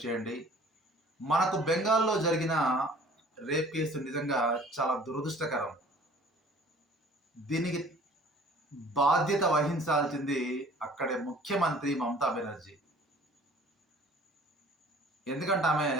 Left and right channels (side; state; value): both; normal; correlation 0.50